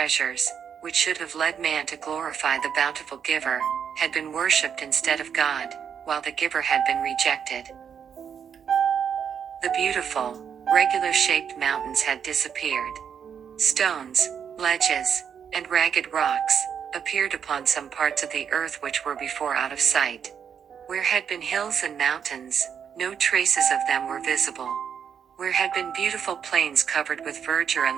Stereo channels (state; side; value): quieter; left; 7.7 dB